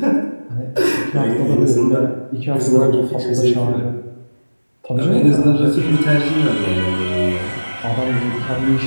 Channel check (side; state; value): both; inverted; correlation -1.00